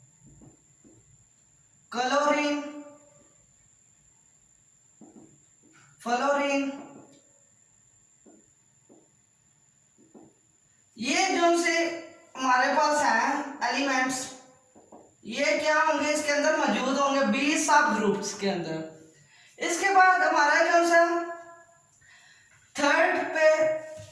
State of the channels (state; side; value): identical; both; correlation 1.00